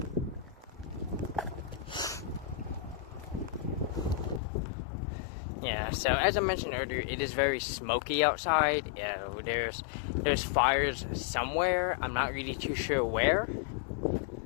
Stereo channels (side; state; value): right; drops out; at 4.4 s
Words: Yeah, so as I mentioned earlier, it is very smoky outside. Yeah, there's fires somewhere. I'm not really too sure where.